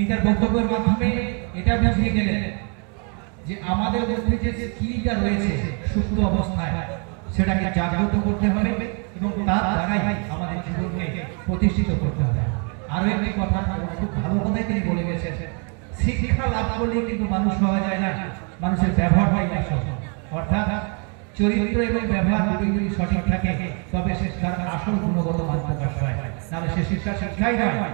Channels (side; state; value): left; quieter; 37.4 dB